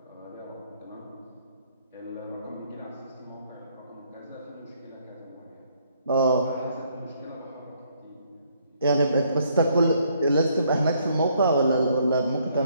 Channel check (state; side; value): inverted; both; correlation -0.68